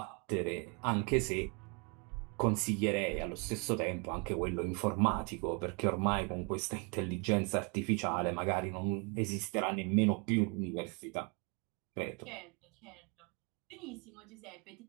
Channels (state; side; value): quieter; left; 33.7 dB